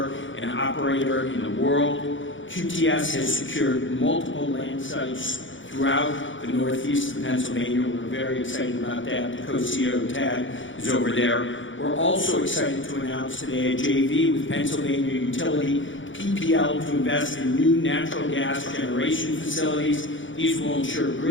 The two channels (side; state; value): right; late; 0.56 ms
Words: and operator in the world. QTS has secured multiple land sites throughout the northeast of Pennsylvania. We're very excited about that. The co-CEO, Tad, is over there. We're also excited to announce today a JV with Pennsylvania utility PPL to invest in new natural gas generation facilities. These will ensure